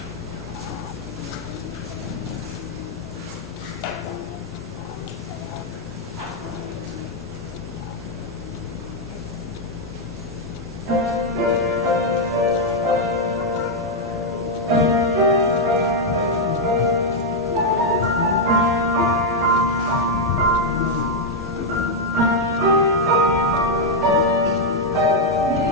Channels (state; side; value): normal; both; correlation 0.00